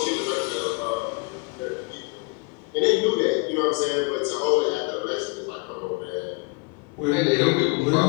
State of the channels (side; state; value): right; quieter; 29.5 dB